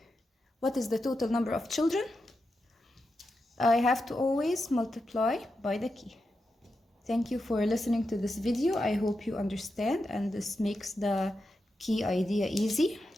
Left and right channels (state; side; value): normal; both; correlation 0.88